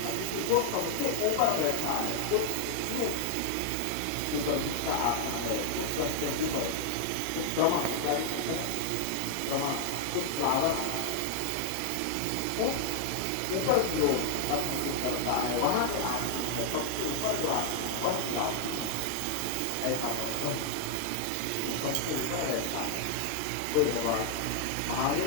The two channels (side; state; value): both; different; correlation 0.00